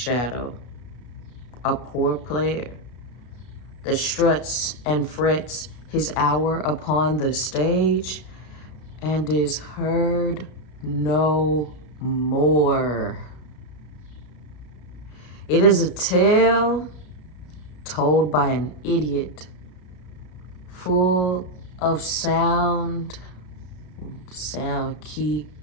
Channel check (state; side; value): late; right; 33 ms